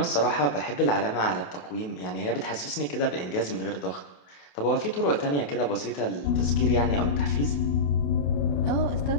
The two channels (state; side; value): late; right; 28 ms